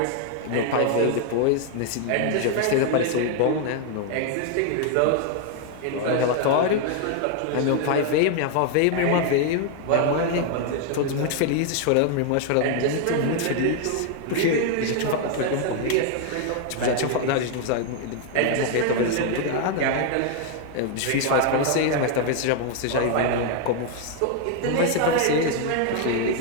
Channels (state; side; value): different; both; correlation 0.00